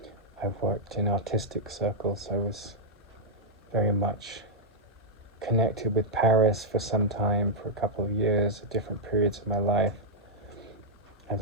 I've worked in artistic circles. I was very much connected with Paris for some time, for a couple of years, at different periods of my life.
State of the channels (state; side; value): normal; both; correlation -0.05